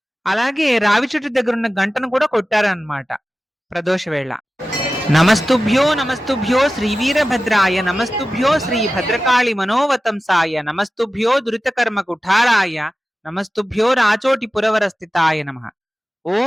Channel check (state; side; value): normal; both; correlation 0.95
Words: అలాగే రావి చెట్టు దగ్గర ఉన్న గంటను కూడా కొట్టారనమాట ప్రదోష వేళ. నమస్తుభ్యో నమస్తుభ్యో శ్రీ వీరభద్రాయ, నమస్తుభ్యో శ్రీ భద్రకాళి మనోవతంసాయ, నమస్తుభ్యో దురితకర్మ కుఠారాయ, నమస్తుభ్యో రాచోటి పురవర స్థితాయ నమః.